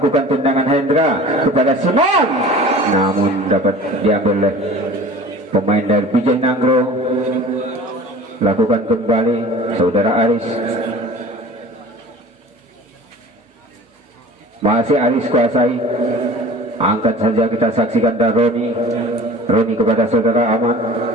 tendangan Hendra kepada Simon, namun dapat diambil oleh pemain dari Bijay Nangro. Lakukan kembali saudara Aris, masih Aris kuasai, angkat saja kita saksikan dari Roni kepada saudara Aman,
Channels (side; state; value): both; normal; correlation 0.42